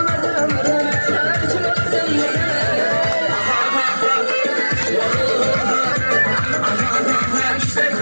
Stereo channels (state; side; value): inverted; both; correlation -1.00